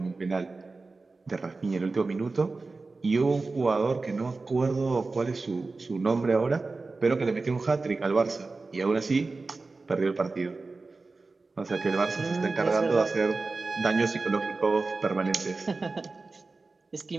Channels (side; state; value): left; quieter; 3.7 dB